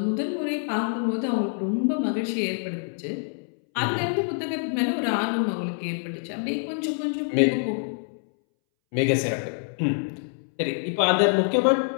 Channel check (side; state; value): right; silent; 61 dB below the other